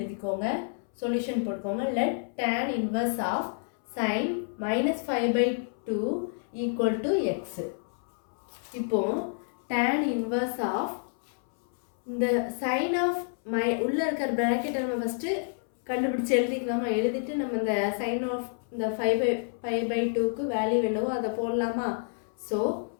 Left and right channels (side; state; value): right; silent; 59 dB below the other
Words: Solution போட்டுக்கோங்க. Let tan inverse of sin minus 5 by 2 equal to x. இப்போ tan inverse of இந்த sin of உள்ள இருக்கிற bracket நம்ம first கண்டுபிடிச்சு எழுதிக்கலாமா? எழுதிட்டு நம்ம இந்த sin of இந்த 5 by 2க்கு வேல்யூ என்னவோ அதை போடலாமா? So